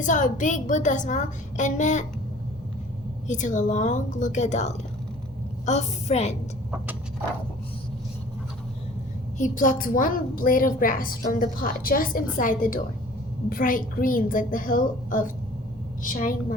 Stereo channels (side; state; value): both; normal; correlation 0.49